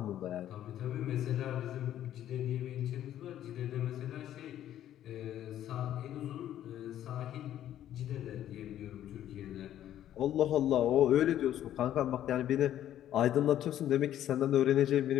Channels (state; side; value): quieter; right; 11.7 dB